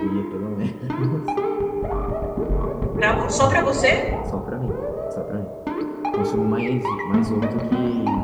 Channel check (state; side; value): identical; both; correlation 1.00